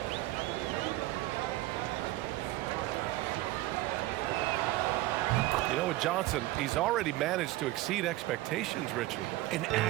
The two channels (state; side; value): quieter; left; 17.4 dB